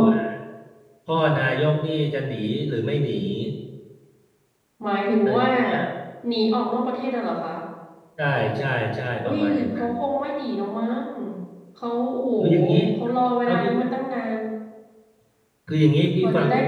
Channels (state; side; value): identical; both; correlation 1.00